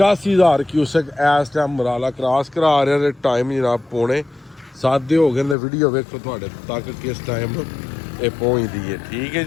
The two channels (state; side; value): drops out; right; at 5.6 s